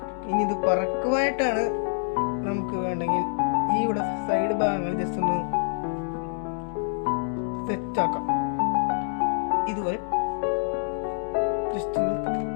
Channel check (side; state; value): right; silent; digital silence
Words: ഇനി ഇത് പറക്കുവായിട്ടാണ് നമുക്ക് വേണ്ടെങ്കിൽ ഈ ഇവിടെ സൈഡ് ഭാഗങ്ങൾ ജസ്റ്റ് ഒന്ന് സെറ്റാക്കാം. ഇതുപോലെ ജസ്റ്റ് ഒന്ന്